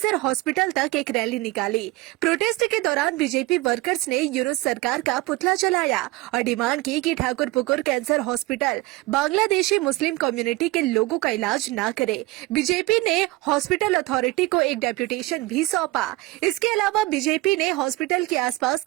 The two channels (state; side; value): quieter; left; 19.6 dB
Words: हॉस्पिटल तक एक रैली निकाली। प्रोटेस्ट के दौरान बीजेपी वर्कर्स ने यूनुस सरकार का पुतला जलाया और डिमांड की कि Thakurpukur cancer hospital Bangladeshi Muslim community के लोगों का इलाज न करे। बीजेपी ने हॉस्पिटल अथॉरिटी को एक डेप्यूटेशन भी सौंपा। इसके अलावा बीजेपी ने हॉस्पिटल के आसपास